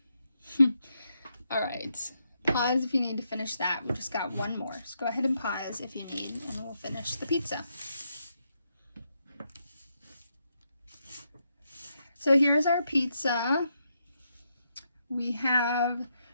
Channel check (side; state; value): both; inverted; correlation -0.81